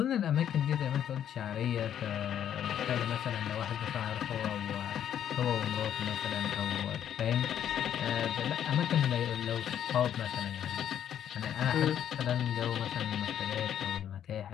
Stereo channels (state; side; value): quieter; right; 9.9 dB